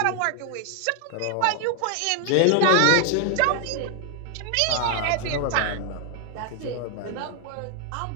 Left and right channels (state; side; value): different; both; correlation 0.00